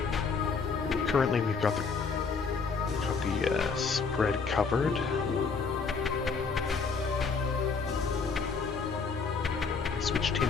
Currently we've got the spread covered. Switched him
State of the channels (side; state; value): right; quieter; 5.0 dB